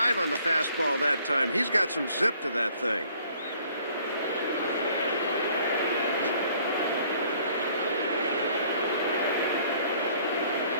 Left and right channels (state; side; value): inverted; both; correlation -0.59